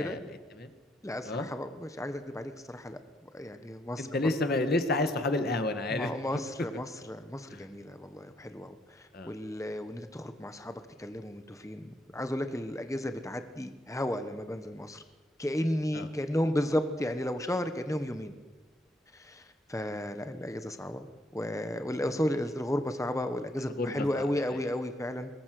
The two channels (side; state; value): both; normal; correlation 0.74